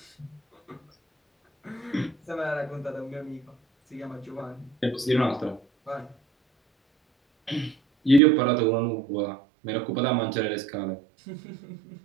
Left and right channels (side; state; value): left; drops out; at 8.2 s